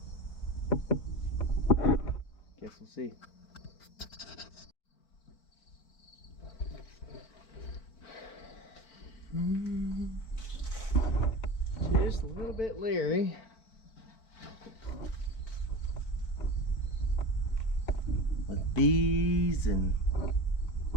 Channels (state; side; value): late; right; 4.5 ms